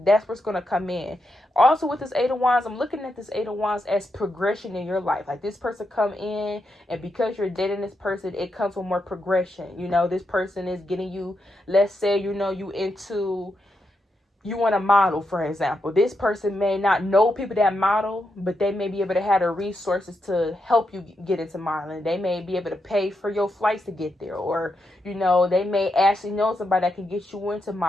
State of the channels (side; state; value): both; normal; correlation 0.84